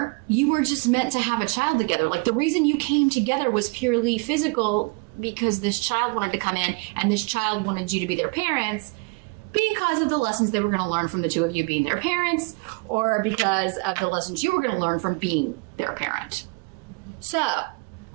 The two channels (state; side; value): quieter; left; 32.1 dB